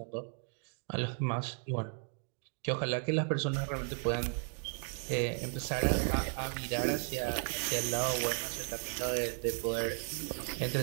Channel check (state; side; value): silent; left; 54 dB below the other